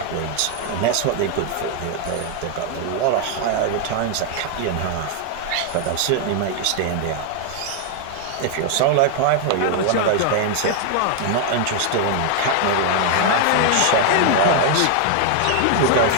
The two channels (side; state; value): both; different; correlation 0.00